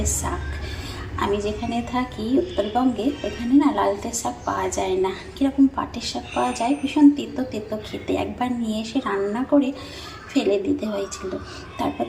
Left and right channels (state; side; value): identical; both; correlation 1.00